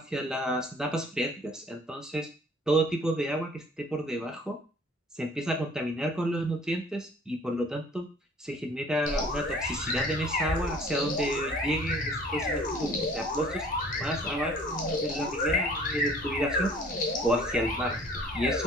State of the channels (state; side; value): normal; both; correlation 0.52